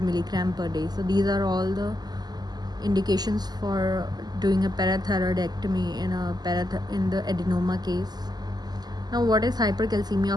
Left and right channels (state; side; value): late; left; 0.20 ms